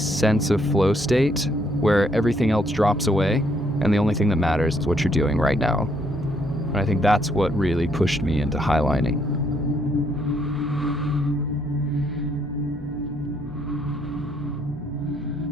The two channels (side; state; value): both; normal; correlation 0.70